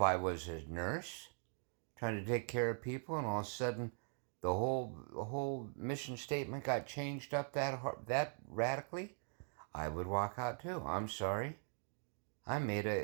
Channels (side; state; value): left; silent; 50 dB below the other